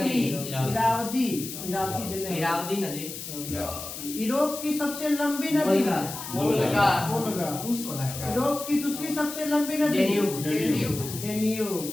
नदी यूरोप की सबसे लंबी नदी वोल्गा वोल्गा। रूस वाला है। यूरोप की दूसरी सबसे लंबी नदी डेन्यूब।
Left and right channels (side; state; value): left; noise; hiss, 9 dB below the sound